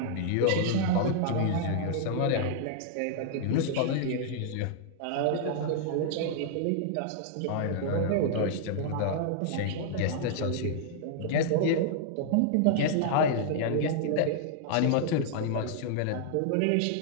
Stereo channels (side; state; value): both; different; correlation -0.01